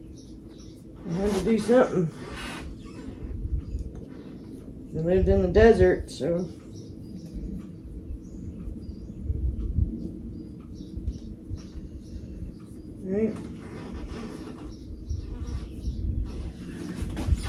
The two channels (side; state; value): both; identical; correlation 1.00